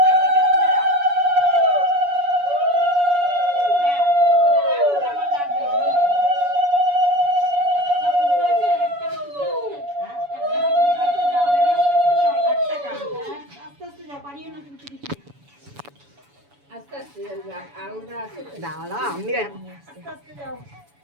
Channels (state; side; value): late; left; 7.0 ms